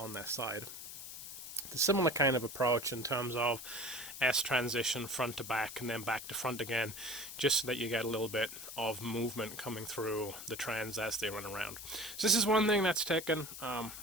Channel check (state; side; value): noise; left; hiss, 10 dB below the sound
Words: their side. It's a similar kind of approach in terms of S transition front to back and then back to front again, just so that you get a little bit of movement coming through the trans as they run around. So this is one thing that's taken